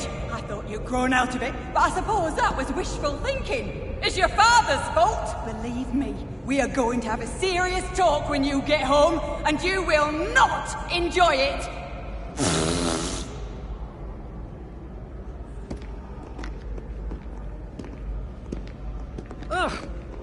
I thought you'd grown out of it, but I suppose that was wishful thinking. It's your father's fault! Believe me, we are going to have a serious talk when you get home, and you will not enjoy it! Ugh.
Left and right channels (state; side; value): identical; both; correlation 1.00